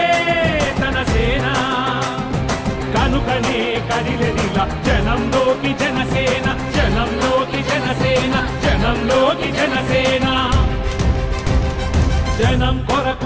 తన సేన కనుకనే కదిలెదిలా జనంలోకి జనసేన జనంలోకి జనసేన జనంలోకి జనసేన జనం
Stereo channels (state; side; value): identical; both; correlation 1.00